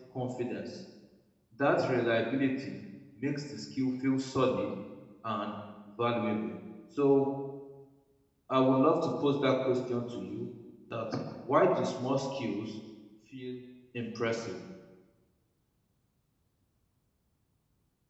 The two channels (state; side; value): identical; both; correlation 1.00